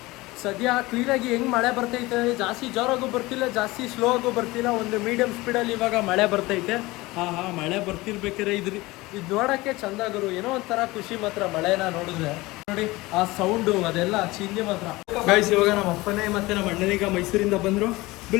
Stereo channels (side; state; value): right; quieter; 20.8 dB